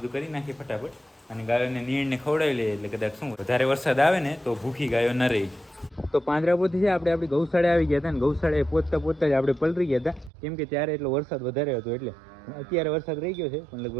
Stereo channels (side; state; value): left; drops out; at 10.3 s